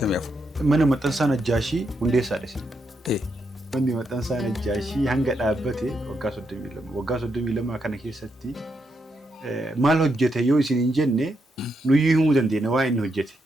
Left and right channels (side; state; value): both; normal; correlation 0.81